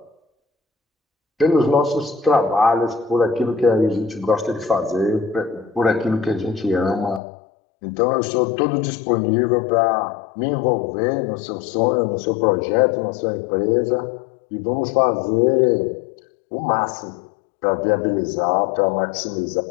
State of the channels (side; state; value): right; drops out; at 7.2 s